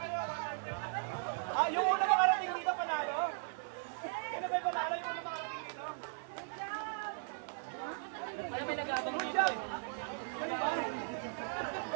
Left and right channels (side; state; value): left; silent; 53 dB below the other